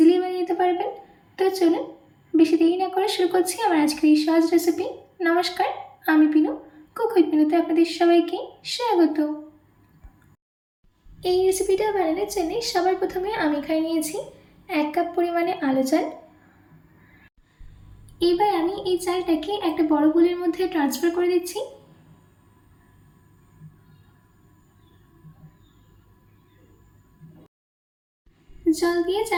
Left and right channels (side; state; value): both; identical; correlation 1.00